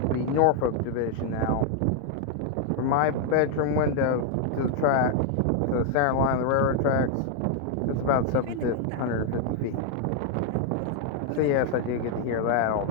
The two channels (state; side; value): different; both; correlation 0.00